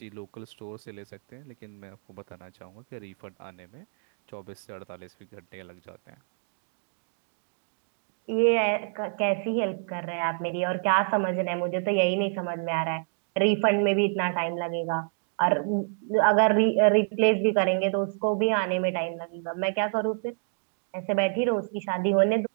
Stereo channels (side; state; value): left; silent; digital silence